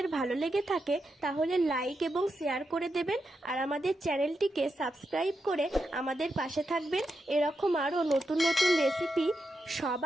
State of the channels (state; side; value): normal; both; correlation 0.86